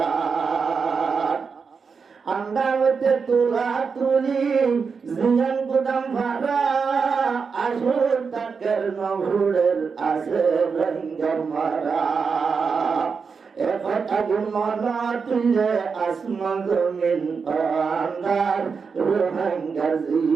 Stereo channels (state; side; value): quieter; left; 5.4 dB